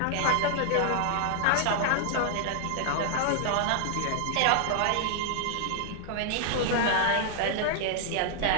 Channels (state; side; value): different; both; correlation -0.01